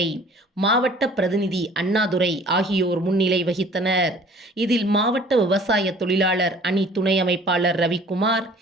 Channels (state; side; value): normal; both; correlation 0.50